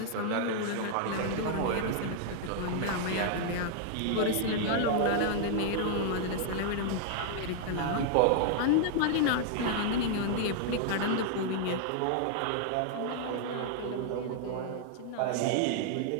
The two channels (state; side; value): different; both; correlation -0.01